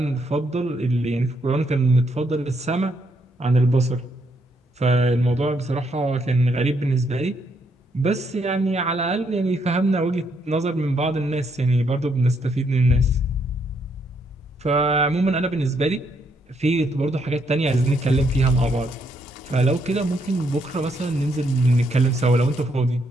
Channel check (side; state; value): both; normal; correlation 0.74